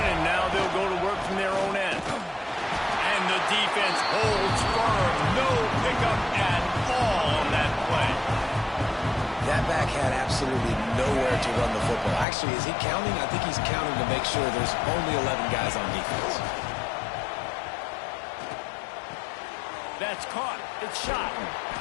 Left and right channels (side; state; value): right; drops out; at 12.2 s